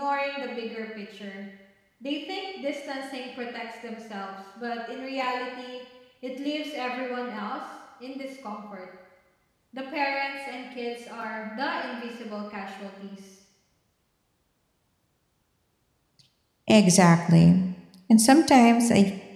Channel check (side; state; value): both; identical; correlation 1.00